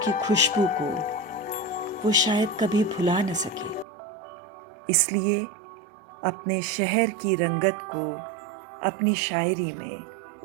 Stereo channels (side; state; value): left; drops out; at 3.9 s